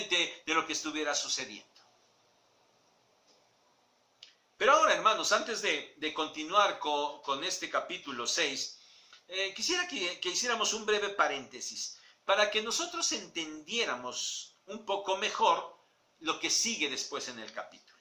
de lo que estuviera sucediendo. Pero ahora, hermanos, antes de continuar con este capítulo 6, quisiera que hiciéramos un breve paréntesis para que nosotros entendiéramos un poco mejor lo que sigue después en el capítulo.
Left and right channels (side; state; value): both; identical; correlation 1.00